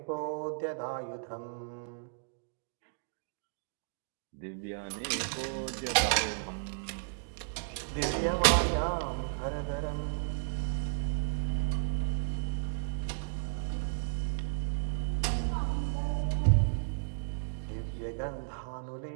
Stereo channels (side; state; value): left; silent; digital silence